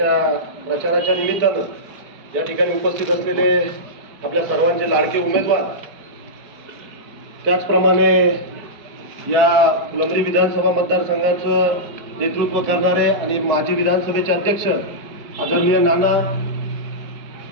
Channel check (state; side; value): late; left; 4.5 ms